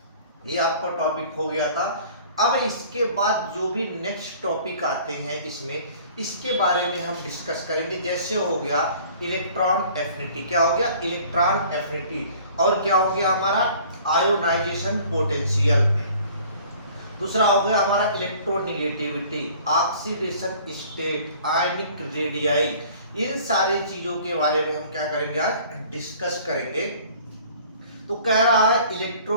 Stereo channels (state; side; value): inverted; both; correlation -0.51